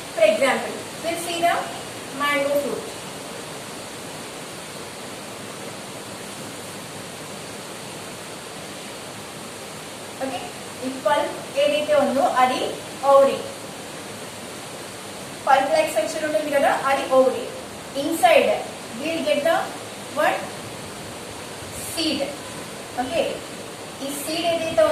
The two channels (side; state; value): both; identical; correlation 1.00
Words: for example we'll see the mango fruit. Okay, ఈ పల్ప్ ఏదైతే ఉందో అది ఓవరీ. పల్ప్ లైక్ స్ట్రక్చర్ ఉంటుంది కదా, అది ovary. Inside we'll get the one seed. Okay, ఈ సీడ్ ఏదైతే